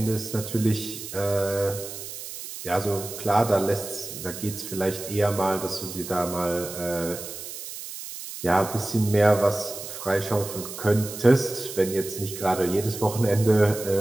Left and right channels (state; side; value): noise; right; hiss, 10 dB below the sound